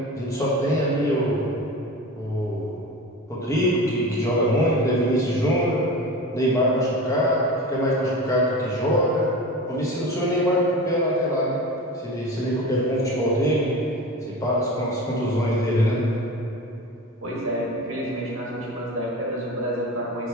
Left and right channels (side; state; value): both; normal; correlation 0.31